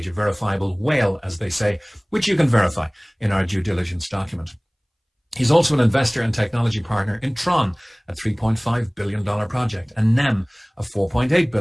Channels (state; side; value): identical; both; correlation 1.00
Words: a verifiable whale, as they say, which you can verify in our due diligence document. He's also an investor and technology partner in Tron, a $3.5 billion project, and NEM, a $4.8